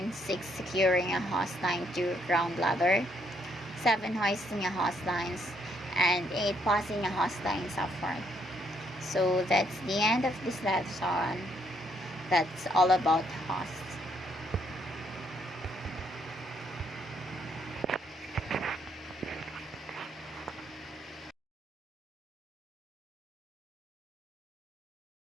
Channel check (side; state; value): both; normal; correlation 0.72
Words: 6. Securing a hose line to ground ladder. 7. Hoisting a hose lines. And 8. Passing a hose lines up front. So that's the end of this lesson. That's all about hose.